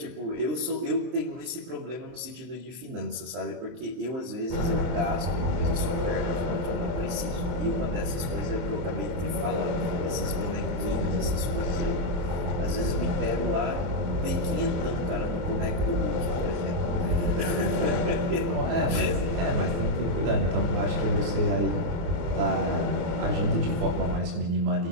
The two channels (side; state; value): left; late; 23 ms